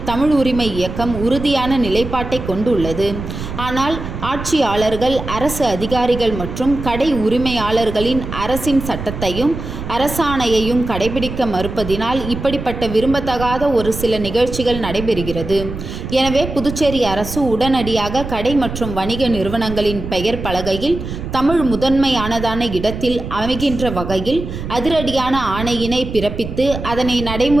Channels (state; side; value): noise; right; rumble, 8 dB below the sound